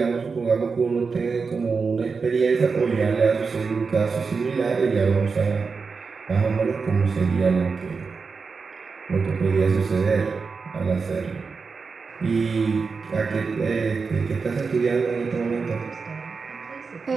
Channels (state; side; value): quieter; left; 4.9 dB